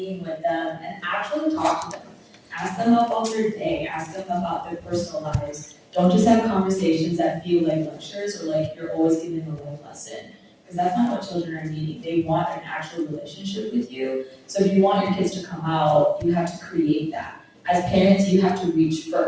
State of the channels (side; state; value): both; identical; correlation 1.00